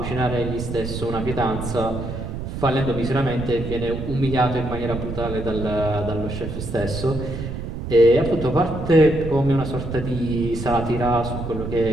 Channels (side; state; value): right; noise; rumble, 6 dB below the sound